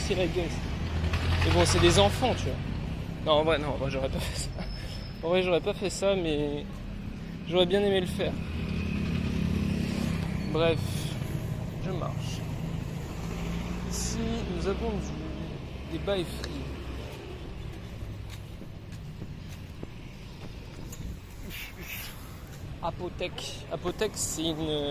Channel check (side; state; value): both; identical; correlation 1.00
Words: la gueule. Mais bon, c'est des enfants, tu vois. Non, en vrai, j'aurais pas fait ça. En vrai, j'aurais pas fait ça, mais j'aurais bien aimé le faire. Bref, je marche. Ici, nous avons des bails free. Apothèque, c'est